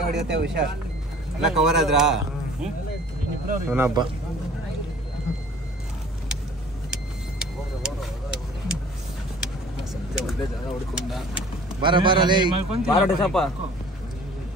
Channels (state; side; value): normal; both; correlation 0.49